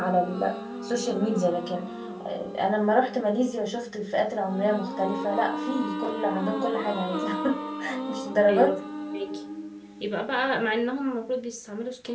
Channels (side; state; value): both; identical; correlation 1.00